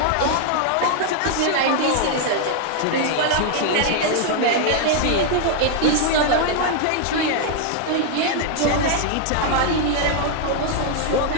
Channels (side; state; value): both; different; correlation 0.00